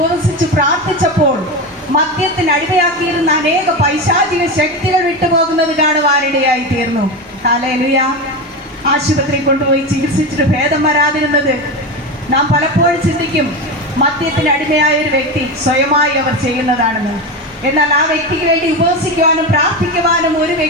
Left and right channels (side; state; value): both; normal; correlation 0.19